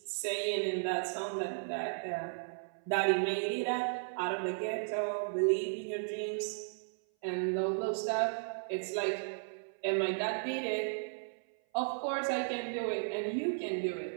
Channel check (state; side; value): silent; left; 54 dB below the other